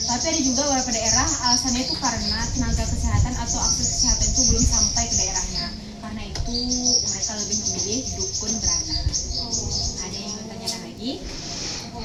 Tapi ada juga beberapa daerah alasannya itu karena tenaga kesehatan atau akses kesehatan itu belum sampai ke daerahnya. Karena itu mereka lebih memilih dukun beranak. Ada yang mau tanyakan lagi? aku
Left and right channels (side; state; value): both; identical; correlation 1.00